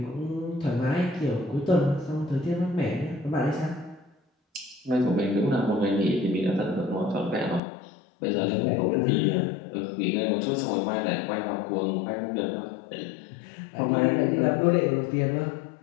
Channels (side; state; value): right; drops out; at 7.6 s